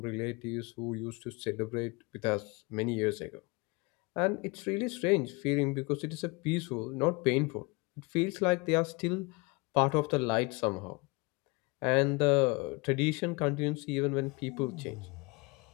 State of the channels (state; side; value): quieter; right; 26.7 dB